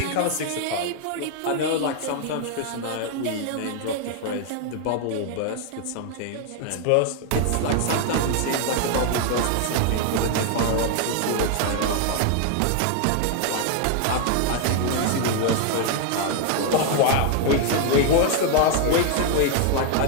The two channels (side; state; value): both; different; correlation 0.00